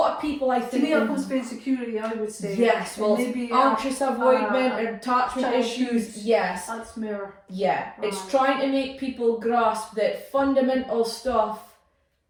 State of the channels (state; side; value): identical; both; correlation 1.00